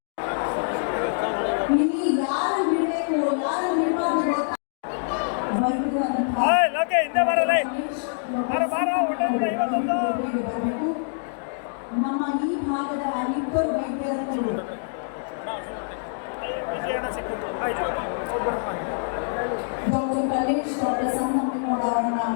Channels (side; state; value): right; silent; digital silence